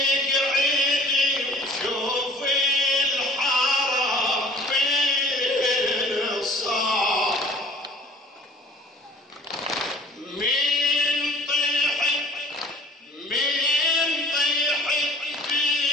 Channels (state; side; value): normal; both; correlation 0.50